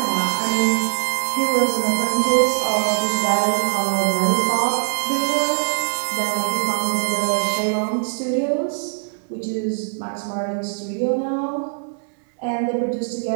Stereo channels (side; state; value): left; silent; digital silence